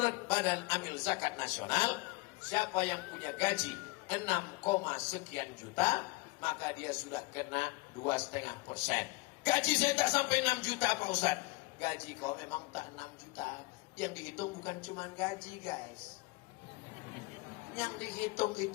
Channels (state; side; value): quieter; right; 24.5 dB